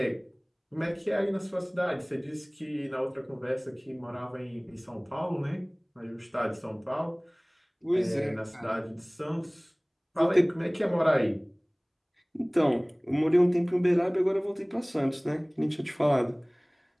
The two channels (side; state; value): both; identical; correlation 1.00